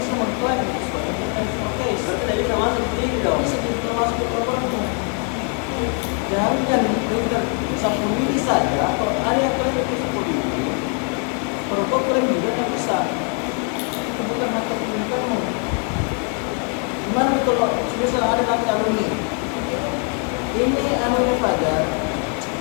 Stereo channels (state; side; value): quieter; right; 39.7 dB